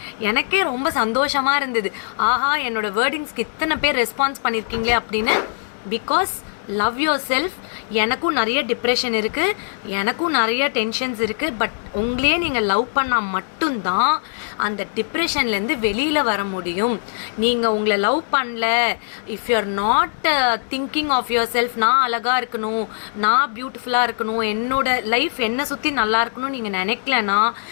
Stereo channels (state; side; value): silent; right; digital silence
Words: எனக்கே ரொம்ப சந்தோஷமாக இருந்தது. ஆஹா, என்னோட வேர்டிங்ஸ்க்கு இத்தனை பேர் ரெஸ்பான்ஸ் பண்ணியிருக்கீங்களே அப்படின்னு. Because love your self. எனக்கும் நிறைய டிப்ரெஷன் இருக்குது, எனக்கும் நிறைய டென்ஷன்ஸ் இருக்குது. பட் உங்களையே நீங்கள் லவ் பண்ணால் மட்டும்தான் அந்த டிப்ரெஷன்லேருந்து வெளியில் வர முடியும். நீங்கள் உங்களை லவ் பண்ணல, if you are not thinking of yourself, நான் அழகாக இருக்கணும், நான் பியூட்டிஃபுல்லாக இருக்கணும், என்னோட லைஃப் என்னை சுற்றி நல்லா இருக்கணும்னு நீங்கள் நினைக்கலன்னா